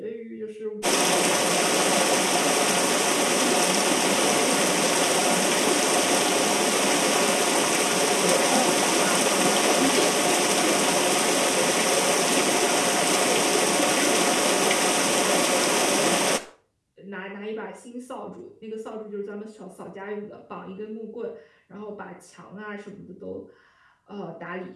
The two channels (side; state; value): both; identical; correlation 1.00